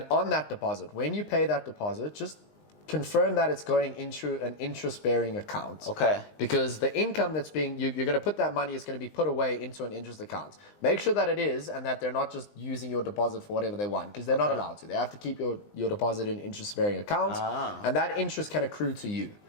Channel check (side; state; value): right; late; 20 ms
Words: on that deposit, when you pay that deposit, just confirm that it's going into an interest-bearing account. Okay. Because the income that's you're going to put that money is going to be put away into an interest account. Make sure that it is, and that they're not just using your deposit for whatever they want, because they're not allowed to. They have to keep your deposit in interest-bearing account, and that interest can accrue to you.